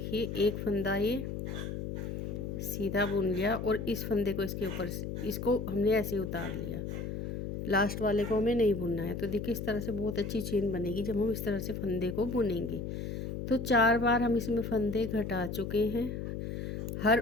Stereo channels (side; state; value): left; noise; hum, 5 dB below the sound